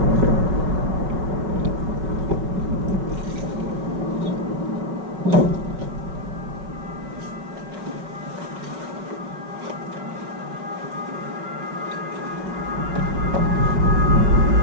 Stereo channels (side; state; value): left; late; 5.2 ms